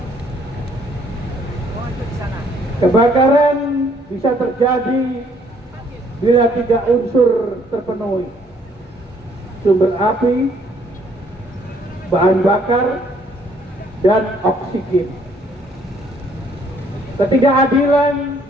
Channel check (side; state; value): both; normal; correlation 0.64